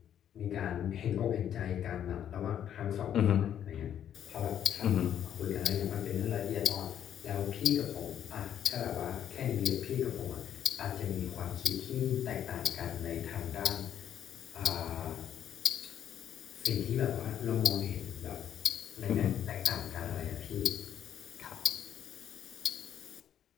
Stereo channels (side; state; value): right; quieter; 9.9 dB